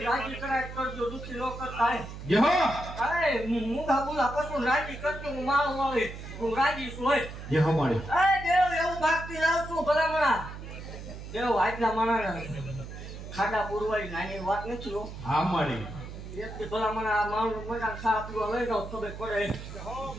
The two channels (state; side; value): noise; right; hum, 11 dB below the sound